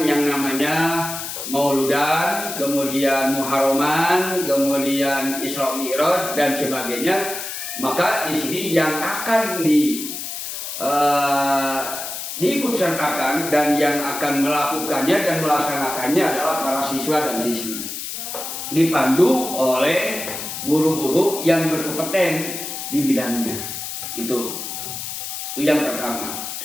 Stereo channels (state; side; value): noise; left; hiss, 7 dB below the sound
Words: yang namanya Mauludan, kemudian Muharraman, kemudian Isra Mi'raj dan sebagainya. Maka di sini yang akan diikut sertakan dan yang akan melakukannya dan melaksanakannya adalah para siswa dan siswi, dipandu oleh guru-guru yang berkompeten di bidangnya. Itu yang pertama.